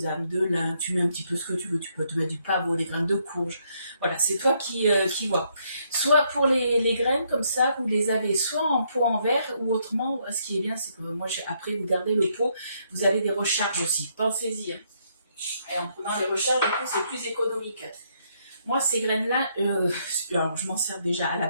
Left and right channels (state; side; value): inverted; both; correlation -0.73